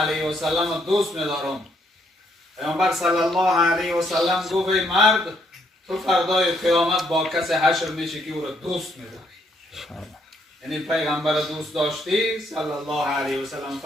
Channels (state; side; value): normal; both; correlation 0.72